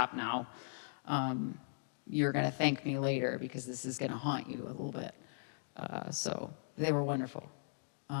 now. You're going to thank me later because this is going to haunt you a little bit. So they were wonderful.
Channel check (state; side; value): silent; right; digital silence